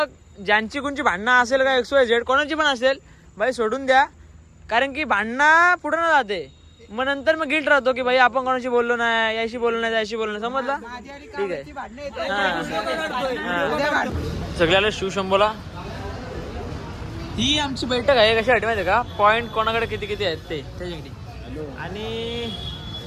ज्यांची कोणची भांडणं असेल का XYZ कोणाची पण असेल बाई सोडून द्या. कारण की भांडणं पुढे न जाते. मग नंतर मग गिल्ट राहतो की भाई आपण कोणाशी बोललो नाही, याशी बोललो नाही, त्याशी बोललो नाही. समजला? ठीक आहे. सगळ्याला शिवशंभोला ही आमची बैठक आहे. कशासाठी माहिती आहे का? पॉईंट कोणाकडे किती किती आहेत ते त्याच्यासाठी. आणि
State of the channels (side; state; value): both; identical; correlation 1.00